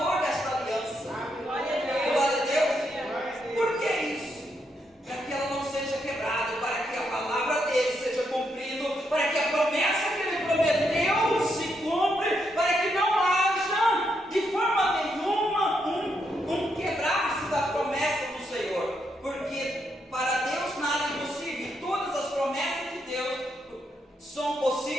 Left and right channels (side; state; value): both; normal; correlation 0.79